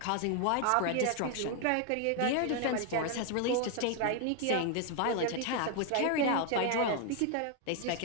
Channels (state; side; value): different; both; correlation 0.00